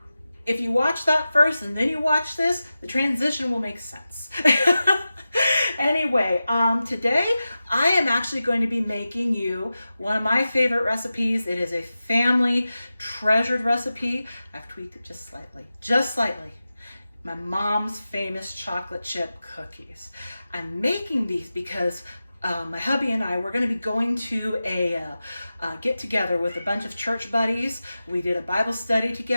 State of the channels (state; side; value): inverted; both; correlation -0.94